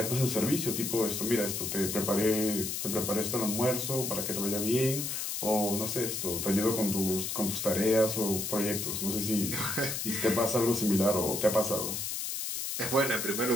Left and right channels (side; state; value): left; noise; hiss, 3 dB below the sound